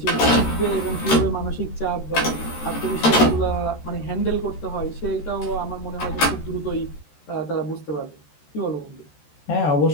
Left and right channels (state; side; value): late; right; 13 ms